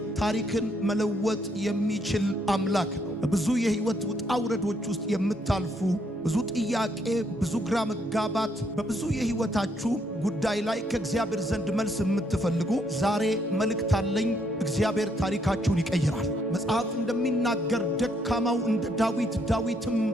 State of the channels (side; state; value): both; normal; correlation 0.72